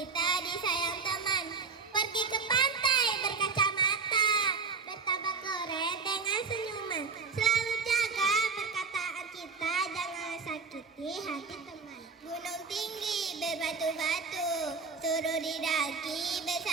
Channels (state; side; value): quieter; left; 4.8 dB